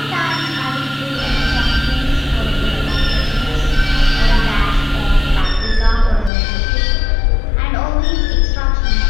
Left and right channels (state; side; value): drops out; right; at 6.3 s